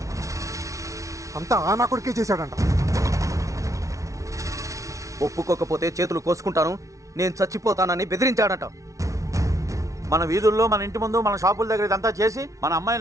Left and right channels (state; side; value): late; left; 0.15 ms